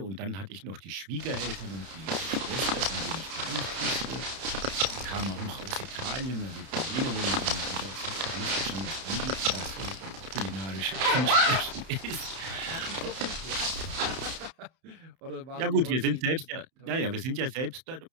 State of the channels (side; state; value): left; late; 31 ms